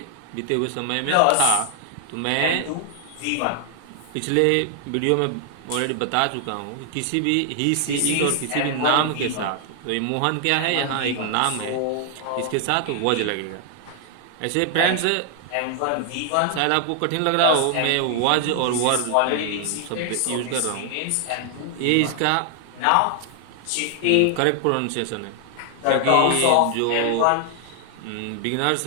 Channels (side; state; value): both; different; correlation 0.00